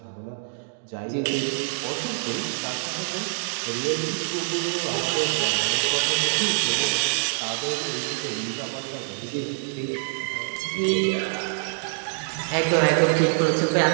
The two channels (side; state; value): left; silent; digital silence